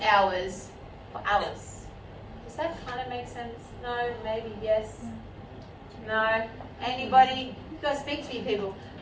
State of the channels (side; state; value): both; identical; correlation 1.00